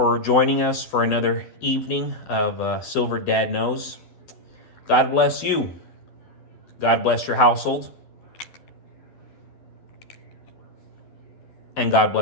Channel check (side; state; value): right; late; 12 ms